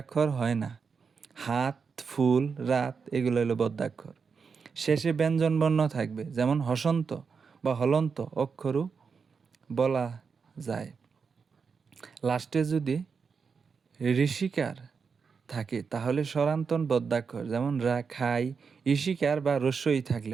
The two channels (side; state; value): left; quieter; 5.6 dB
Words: হয় না, হাত, ফুল, রাত এগুলো হলো বদ্যাক্ষর। শেষে ব্যঞ্জনবর্ণ থাকবে, যেমন হসন্ত বা হলন্ত অক্ষরও বলা যায়। লাস্টে যদি ঋষিকার থাকে তাহলে স্বরান্তন বদ্যাক্ষর, যেমন রা, খাই, ঈশিকার বা রস্যই